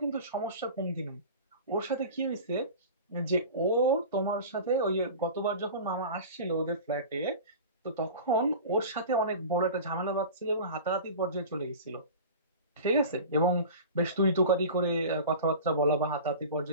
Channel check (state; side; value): inverted; both; correlation -0.35